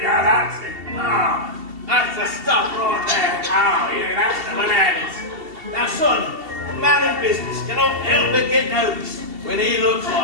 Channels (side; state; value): left; late; 2.7 ms